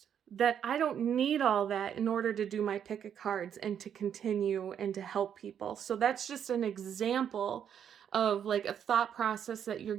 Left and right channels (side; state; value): left; quieter; 8.7 dB